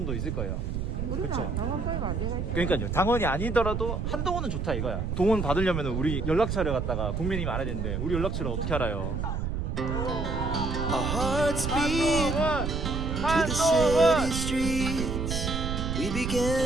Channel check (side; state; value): right; noise; rumble, 2 dB below the sound